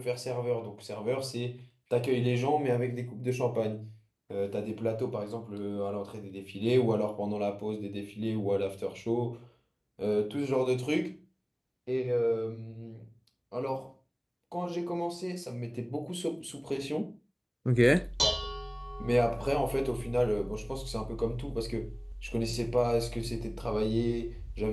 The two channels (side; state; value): both; identical; correlation 1.00